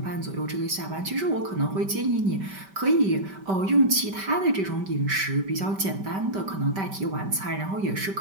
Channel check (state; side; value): late; left; 5.1 ms